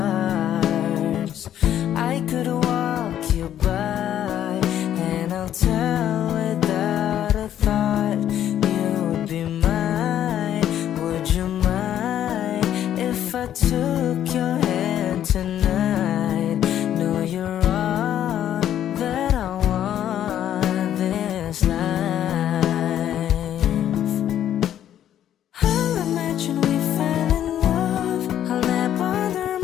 I could walk you by, and I'll tell without a thought you would be mine. Would you mind if I took your hand tonight? No, you're all that I want this life. I'll imagine we fell in love. I'll nap under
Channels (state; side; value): quieter; right; 10.9 dB